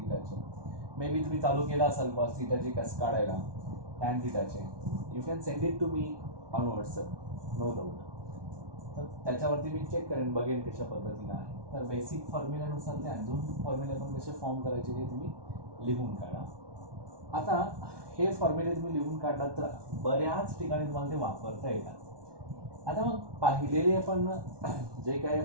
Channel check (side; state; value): left; late; 1.2 ms